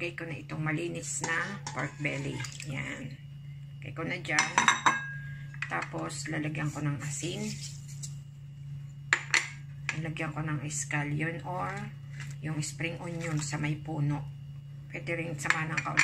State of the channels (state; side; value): identical; both; correlation 1.00